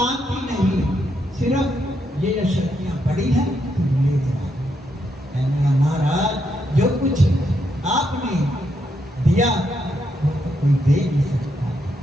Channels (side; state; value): both; normal; correlation 0.79